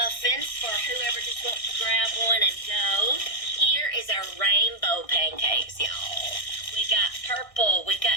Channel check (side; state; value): right; late; 1.6 ms